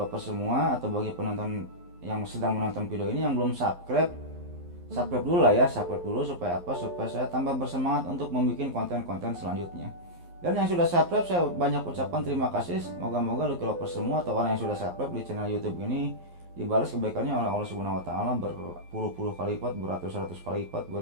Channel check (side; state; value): left; late; 11 ms